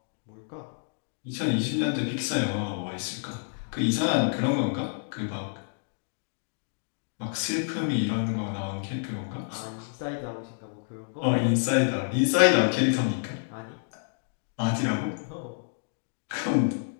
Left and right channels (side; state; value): right; silent; digital silence